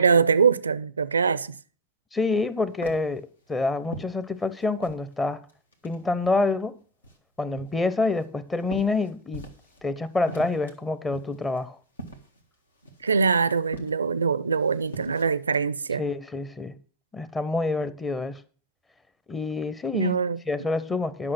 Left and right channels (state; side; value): normal; both; correlation -0.02